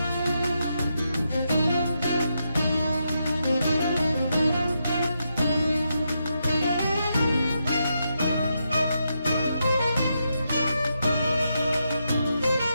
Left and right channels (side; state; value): both; inverted; correlation -0.83